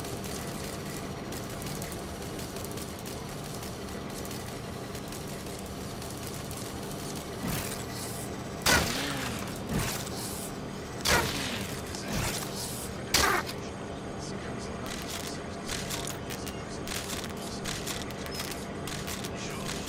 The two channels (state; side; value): identical; both; correlation 1.00